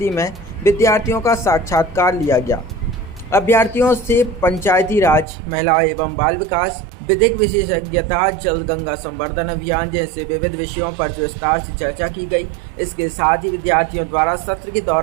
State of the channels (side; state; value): left; drops out; at 5.2 s